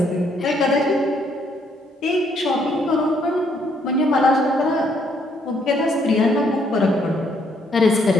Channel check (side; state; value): both; normal; correlation 0.69